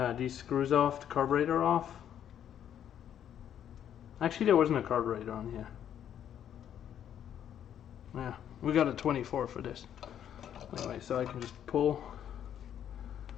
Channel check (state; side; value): quieter; right; 9.8 dB